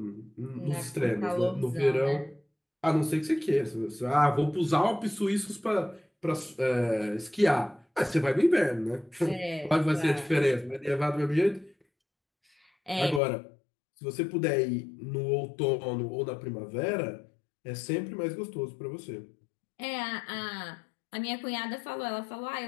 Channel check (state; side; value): drops out; right; at 13.2 s